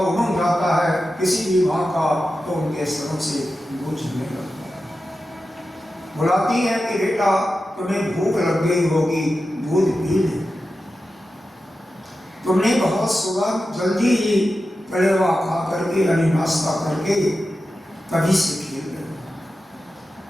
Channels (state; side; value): normal; both; correlation 0.92